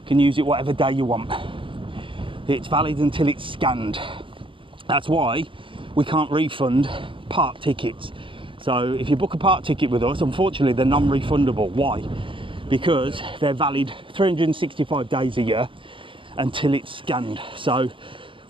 can use it whatever day you want. It's valid until it's scanned. That's why we can't refund park tickets. So if you book a park ticket with us, unfortunately they're non-refundable. Why? Because they're valid 365 days a year until it's scanned. So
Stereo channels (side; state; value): left; late; 0.25 ms